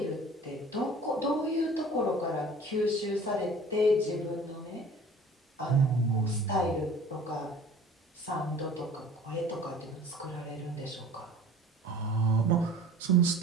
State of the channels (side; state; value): both; normal; correlation 0.46